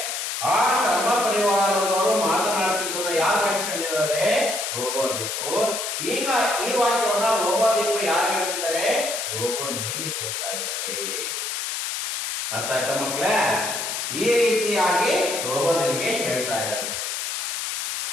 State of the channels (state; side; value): noise; left; hiss, 3 dB below the sound